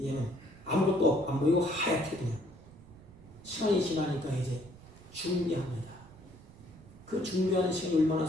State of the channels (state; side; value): noise; right; rumble, 22 dB below the sound